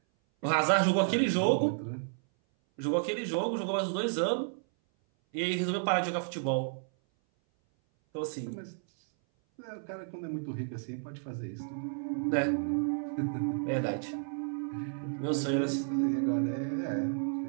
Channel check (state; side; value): silent; left; 57 dB below the other